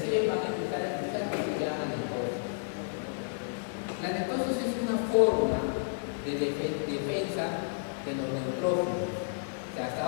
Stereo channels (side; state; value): right; silent; digital silence